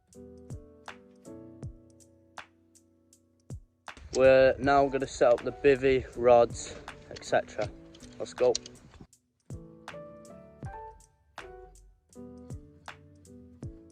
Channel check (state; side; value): identical; both; correlation 1.00